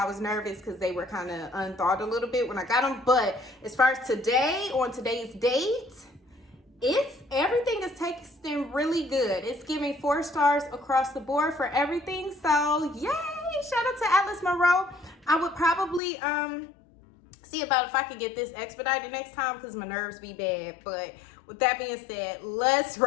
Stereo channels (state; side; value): drops out; right; at 16.0 s